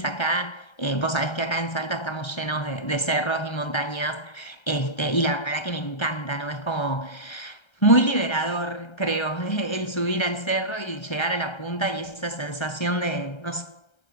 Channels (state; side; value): late; right; 1.3 ms